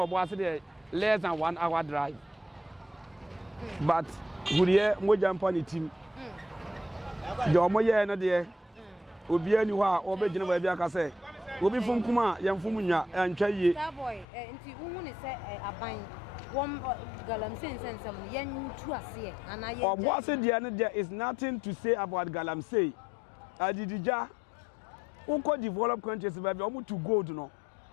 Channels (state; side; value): drops out; right; at 14.2 s